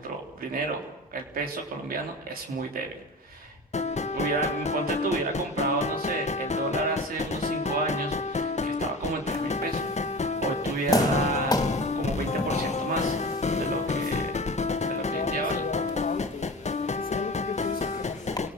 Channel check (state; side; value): normal; both; correlation 0.33